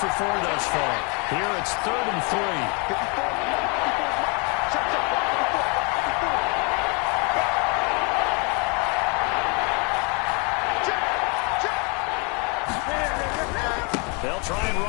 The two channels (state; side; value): quieter; right; 32.9 dB